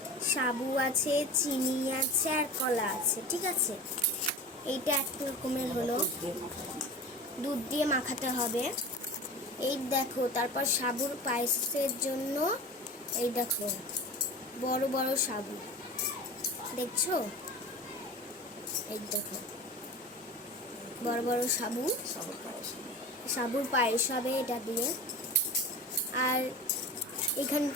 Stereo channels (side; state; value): both; normal; correlation 0.35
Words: সাবু আছে, চিনি আছে, আর কলা আছে, ঠিক আছে। এইটা এক রকমের হলো, দুধ দিয়ে মাখাতে হবে। এই দেখো, তারপর সাবুর পায়েসের জন্য এই দেখো বড় বড় সাবু, দেখছো? এই দেখো বড় বড় সাবু, সাবুর পায়েস হবে এটা দিয়ে। আর